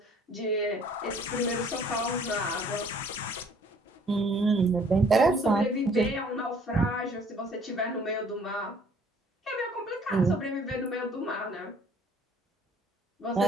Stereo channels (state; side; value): normal; both; correlation 0.58